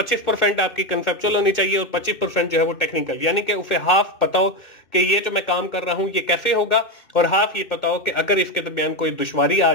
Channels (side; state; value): right; late; 2.6 ms